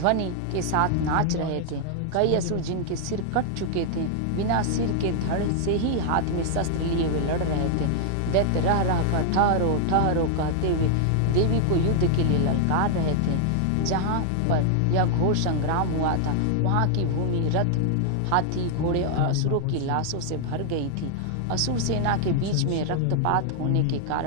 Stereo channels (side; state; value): both; different; correlation 0.00